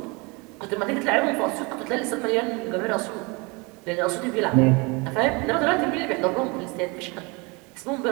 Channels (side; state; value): left; quieter; 28.2 dB